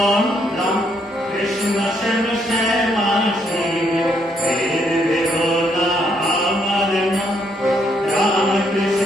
রাম কৃষ্ণ শ্যাম শ্যামা শিব ভেদ ভেদ না আমার নাম। রাম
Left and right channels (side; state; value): both; normal; correlation 0.73